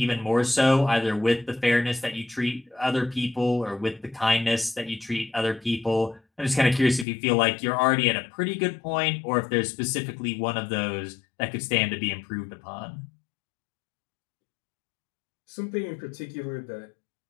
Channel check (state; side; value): drops out; right; at 7.1 s